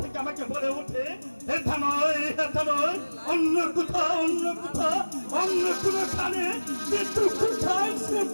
আমাকে বলে ওঠে, এটা নয়, এটা নয়, অন্য কোথাও, অন্য কোথাও, অন্য কোনো খানে, কিন্তু কোথায় সে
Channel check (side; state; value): both; inverted; correlation -1.00